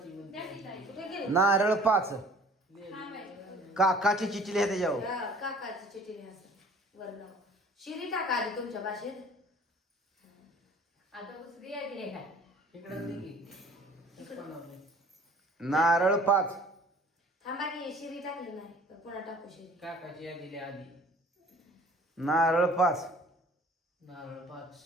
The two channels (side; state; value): both; normal; correlation 0.50